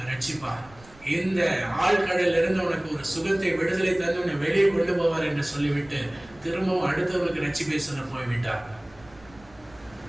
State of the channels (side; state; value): right; noise; rumble, 25 dB below the sound